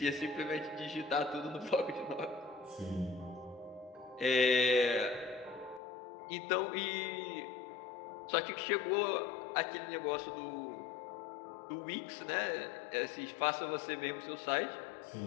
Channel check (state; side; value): drops out; right; at 5.8 s